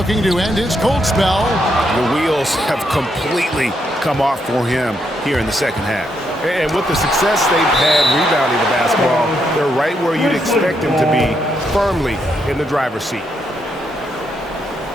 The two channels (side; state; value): both; normal; correlation 0.78